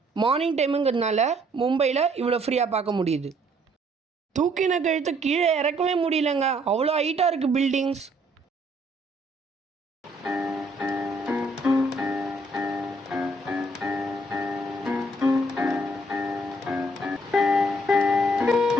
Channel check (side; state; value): both; normal; correlation 0.66